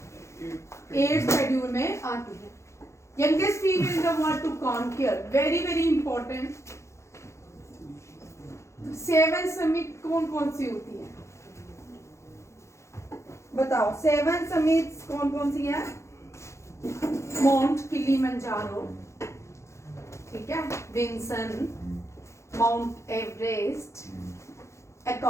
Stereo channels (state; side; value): late; right; 0.14 ms